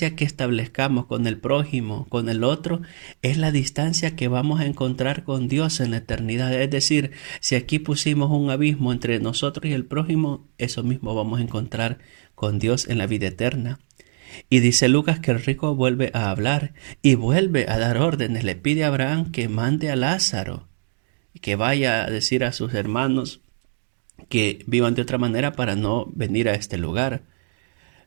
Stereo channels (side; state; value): left; silent; digital silence